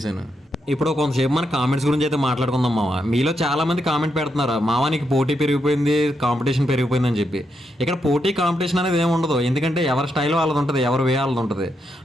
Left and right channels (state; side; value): normal; both; correlation 0.82